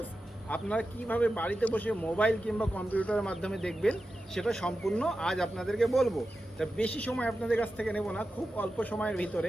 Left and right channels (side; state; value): both; normal; correlation 0.92